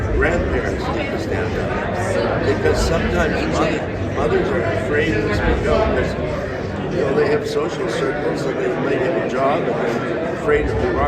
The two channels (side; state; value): both; identical; correlation 1.00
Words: grandparents need to stand up. Because sometimes mothers are afraid to speak out because they have social circles and they might have a job and they're afraid if they